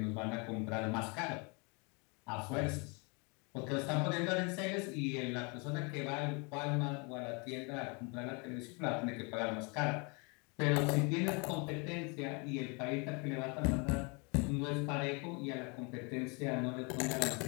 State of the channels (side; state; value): right; quieter; 32.1 dB